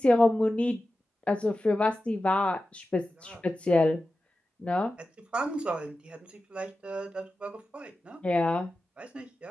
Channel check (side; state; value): both; normal; correlation 0.93